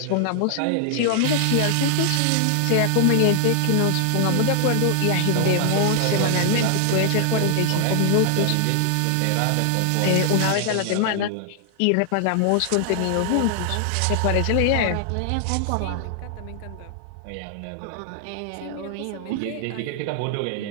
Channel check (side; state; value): both; different; correlation 0.00